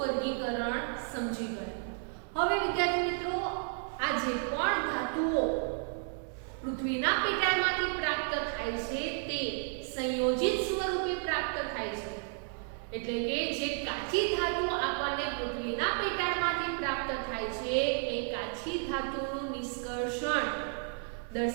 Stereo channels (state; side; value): silent; left; 56 dB below the other